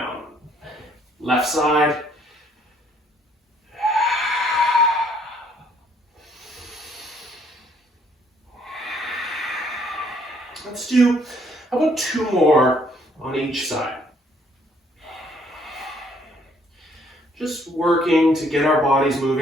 Left side. Let's do, how about two more on each side? Just working to get our bodies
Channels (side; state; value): both; normal; correlation 0.65